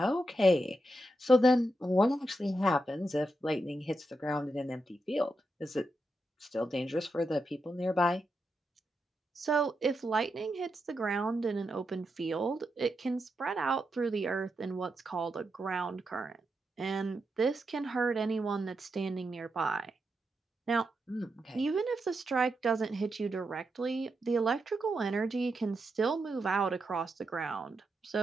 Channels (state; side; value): normal; both; correlation 0.85